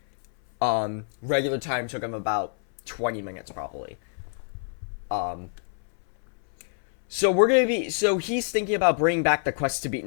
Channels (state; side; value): silent; right; 61 dB below the other